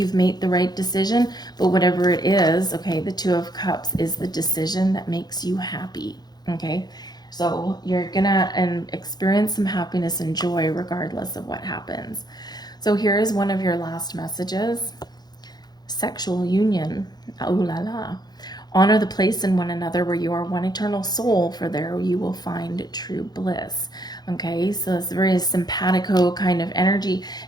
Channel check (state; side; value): late; right; 0.20 ms